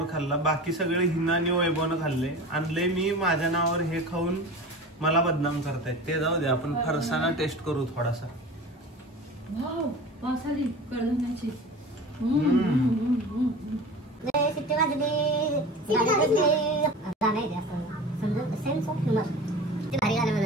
खाल्ला. बाकी सगळे हिना आणि वैभवनं खाल्ले. आणले मी माझ्या नावावर, हे खाऊन मला बदनाम करतायत. ते जाऊ दे, आपण फरसाना टेस्ट करू थोडासा. वाव, वास आली कडधान्याची. सिट्टी वाजली, सेन्स ऑफ ह्युमर. ते भारी गाणं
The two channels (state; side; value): normal; both; correlation 0.35